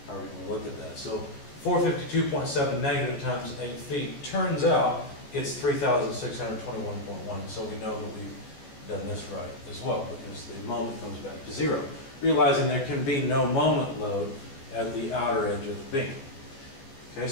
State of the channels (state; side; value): late; right; 15 ms